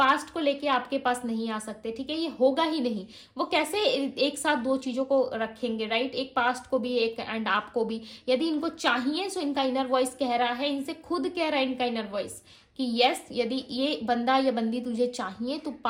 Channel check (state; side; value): identical; both; correlation 1.00